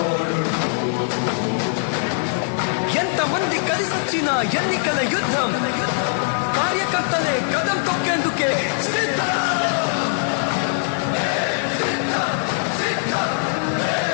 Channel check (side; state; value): right; silent; 64 dB below the other